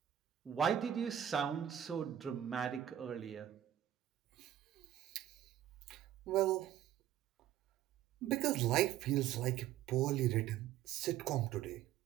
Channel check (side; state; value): left; quieter; 11.3 dB